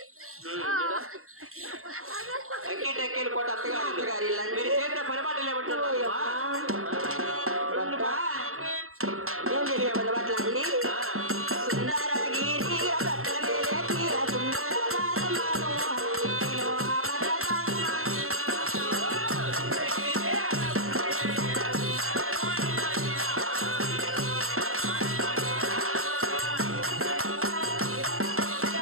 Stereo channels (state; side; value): late; left; 0.62 ms